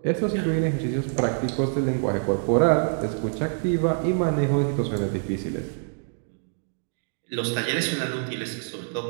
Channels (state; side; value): silent; left; digital silence